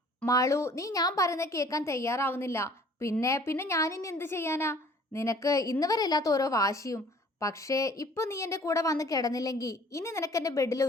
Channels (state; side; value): normal; both; correlation 0.53